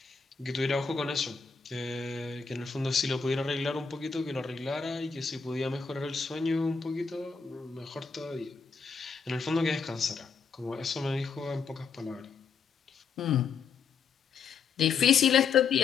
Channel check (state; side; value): quieter; right; 5.6 dB